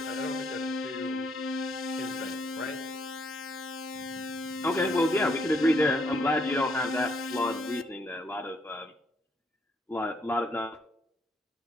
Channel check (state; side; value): normal; both; correlation 0.71